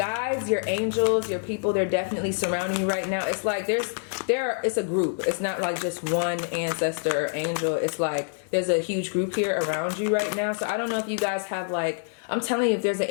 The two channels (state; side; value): silent; right; 59 dB below the other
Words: your angels, your people, they're definitely surrounding you right now. It's like it's a group. It's not like just one ancestor or angel. It's like there's a huge group here around you right now. So I don't know if you guys have, like, I'm telling you, if there's an